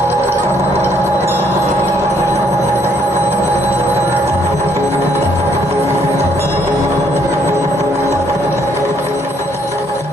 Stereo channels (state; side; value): normal; both; correlation 0.68